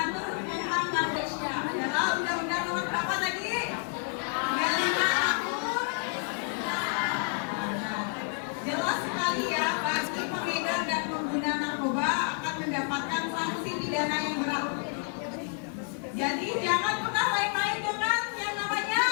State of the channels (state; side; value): quieter; right; 38.3 dB